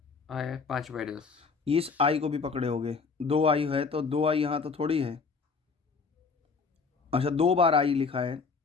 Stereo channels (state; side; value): quieter; right; 4.9 dB